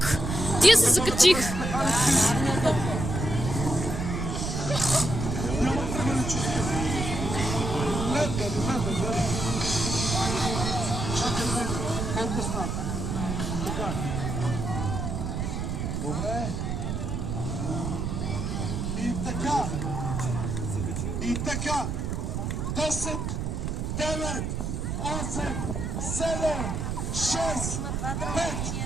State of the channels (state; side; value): noise; right; rumble, 2 dB below the sound